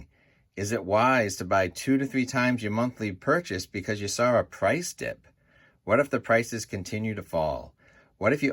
Is it wise to buy 2 to 3 times your monthly purchase because you saw a price dip? What if the prices continue to fall? What if you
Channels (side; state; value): both; identical; correlation 1.00